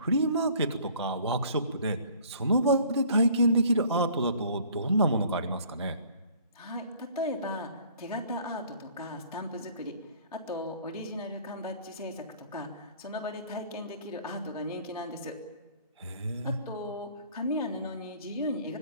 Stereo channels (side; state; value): both; inverted; correlation -0.54